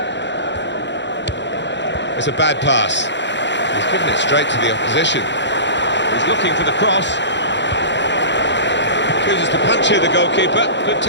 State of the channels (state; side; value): late; right; 0.52 ms